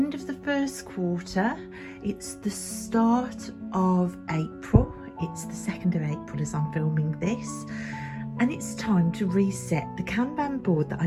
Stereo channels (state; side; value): identical; both; correlation 1.00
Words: of the first quarter, it's the start of April, it's the 2nd of April as I'm filming this, and it's time to reset the Kanban board that I